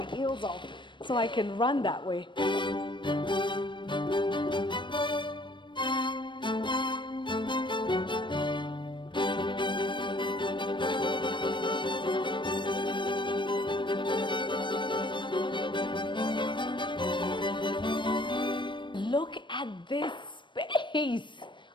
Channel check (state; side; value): late; right; 0.23 ms